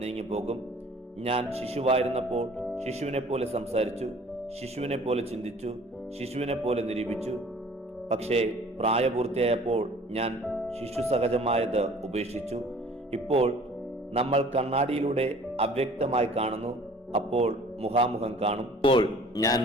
നീങ്ങിപ്പോകും. ഞാൻ ശിശുവായിരുന്നപ്പോൾ ശിശുവിനെ പോലെ സംസാരിച്ചു, ശിശുവിനെ പോലെ ചിന്തിച്ചു, ശിശുവിനെ പോലെ നിരൂപിച്ചു. പക്ഷേ പ്രായപൂർത്തിയായപ്പോൾ ഞാൻ ശിശു സഹജമായത് ഉപേക്ഷിച്ചു. ഇപ്പോൾ നമ്മൾ കണ്ണാടിയിലൂടെ അവ്യക്തമായി കാണുന്നു, അപ്പോൾ മുഖാമുഖം കാണും. ഇപ്പോൾ ഞാൻ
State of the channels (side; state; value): both; normal; correlation 0.51